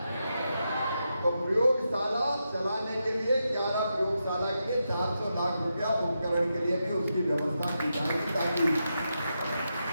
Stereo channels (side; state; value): both; inverted; correlation -0.86